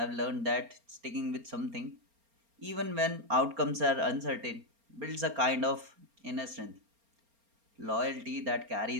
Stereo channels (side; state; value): left; late; 4.3 ms